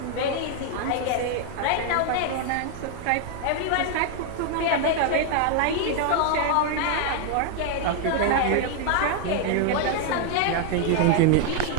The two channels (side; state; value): both; different; correlation 0.00